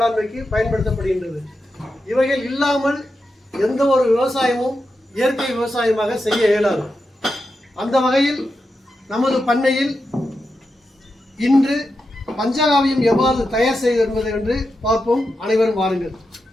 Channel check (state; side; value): normal; both; correlation 0.88